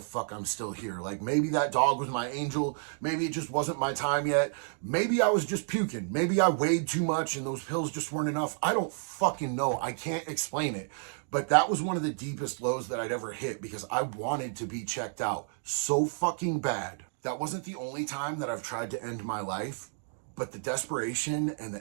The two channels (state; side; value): silent; left; 57 dB below the other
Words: fuck I'm still here. Like, maybe that dog was my angel. Maybe it just wasn't my time yet. Maybe I was just puking. Maybe I weighed too much and those pills just weren't enough. I don't fucking know. I can't explain it. But that was one of the deepest lows that I'd ever hit because I wanted to be checked out so fucking bad. That wasn't the only time that I've tried to end my life, but the desperation and